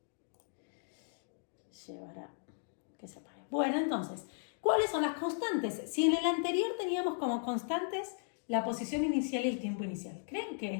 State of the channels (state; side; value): silent; right; digital silence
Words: llevar a que se apague. Bueno, entonces, ¿cuáles son las constantes? Si en el anterior teníamos como constantes la posición inicial y el tiempo inicial, ¿creen